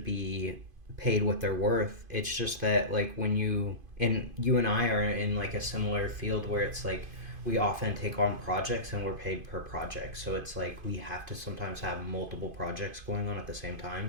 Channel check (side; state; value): left; late; 2.5 ms